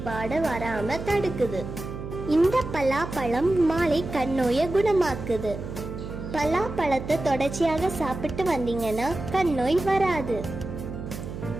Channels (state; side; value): noise; right; hum, 8 dB below the sound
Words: வராம தடுக்குது. இந்த பலாப்பழம் மாலை கண்ணோயை குணமாக்குது. பலாப்பழத்தை தொடர்ச்சியாக சாப்பிட்டு வந்தீங்கன்னா கண்ணோய் வராது.